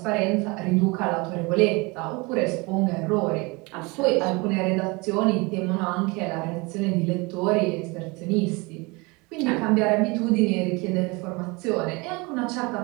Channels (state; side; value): quieter; left; 26.4 dB